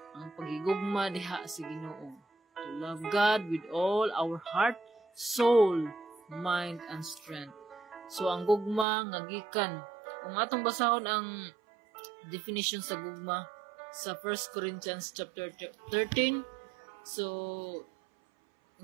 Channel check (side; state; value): left; drops out; at 8.8 s